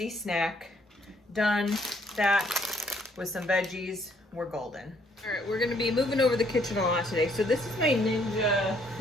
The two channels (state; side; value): normal; both; correlation 0.67